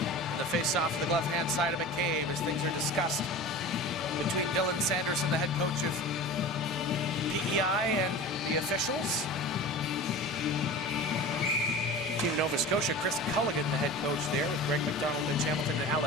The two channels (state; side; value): normal; both; correlation 0.34